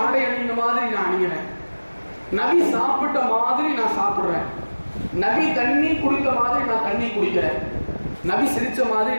ஆடை அணிந்த மாதிரி நான் அணிகிறேன், நபி சாப்பிட்ட மாதிரி நான் சாப்பிடுறேன், நபி தண்ணி குடித்த மாதிரி நான் தண்ணி குடிக்கிறேன், நபி சிரிச்ச மாதிரி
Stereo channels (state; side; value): inverted; both; correlation -1.00